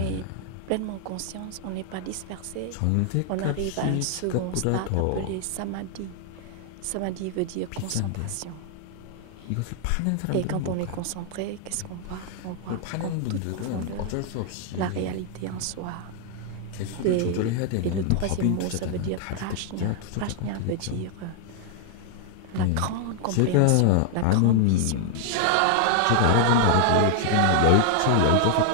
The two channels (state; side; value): different; both; correlation 0.00